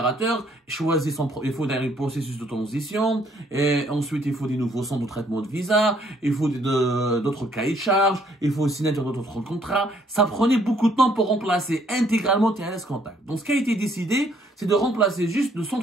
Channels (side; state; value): both; normal; correlation 0.65